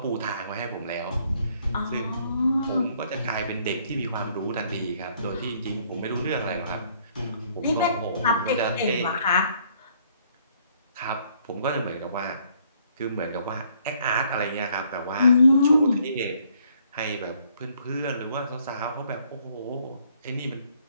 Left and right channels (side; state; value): both; inverted; correlation -0.65